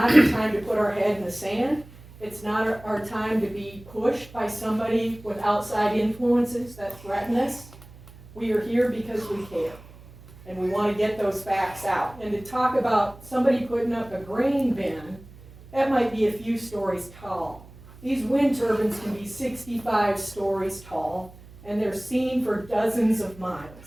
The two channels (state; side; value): noise; right; hum, 20 dB below the sound